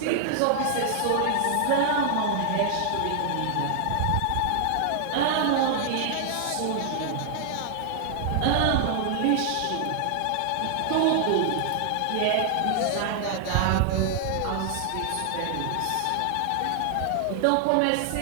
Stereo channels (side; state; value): both; different; correlation 0.00